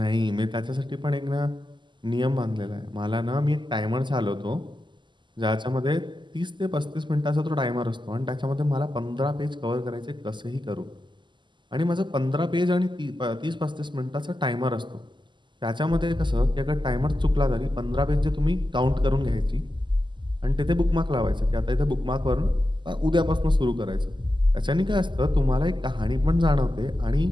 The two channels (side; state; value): left; late; 0.22 ms